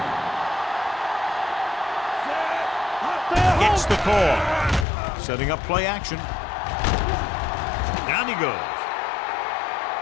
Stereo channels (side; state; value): right; drops out; at 4.9 s